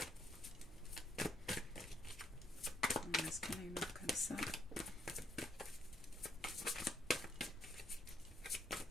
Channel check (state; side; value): normal; both; correlation 0.71